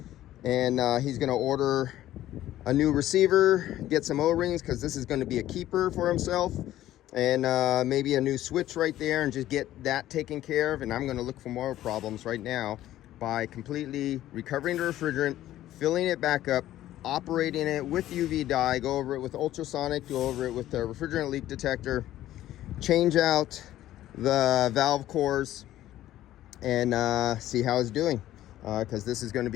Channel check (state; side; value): quieter; right; 13.7 dB